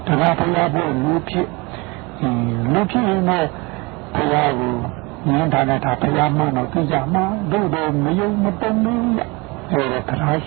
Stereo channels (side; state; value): left; quieter; 26.4 dB